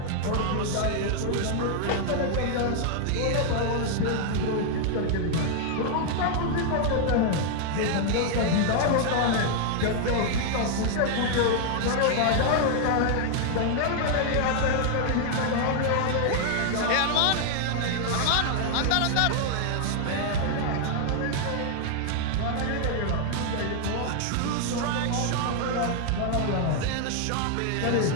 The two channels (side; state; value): both; different; correlation 0.00